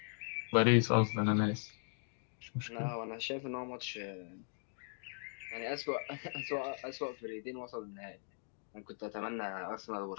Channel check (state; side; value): silent; right; 52 dB below the other